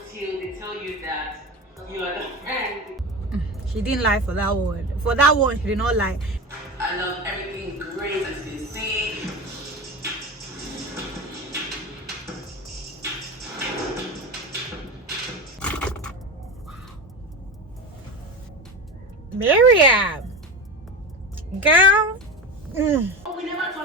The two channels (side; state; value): both; normal; correlation 0.25